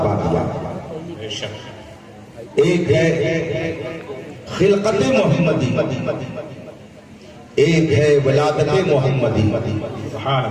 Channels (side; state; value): both; identical; correlation 1.00